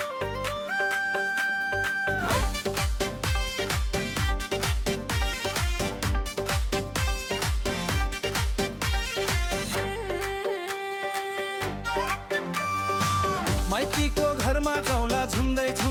माइतीको घरमा जाउँला झुम्दै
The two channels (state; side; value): identical; both; correlation 1.00